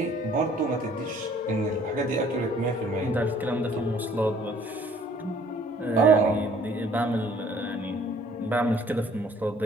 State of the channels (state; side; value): normal; both; correlation 0.58